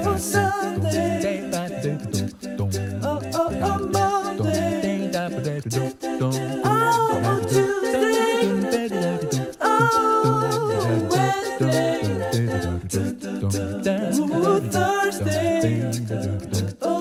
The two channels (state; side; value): identical; both; correlation 1.00